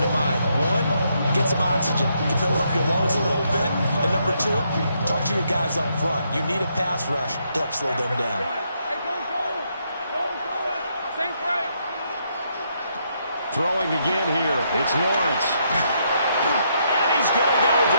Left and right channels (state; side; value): inverted; both; correlation -0.76